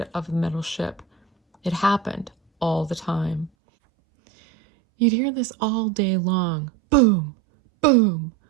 of the metal ship. It happened all the time. You'd hear this all day long. Boom, boom,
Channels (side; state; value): left; drops out; at 3.5 s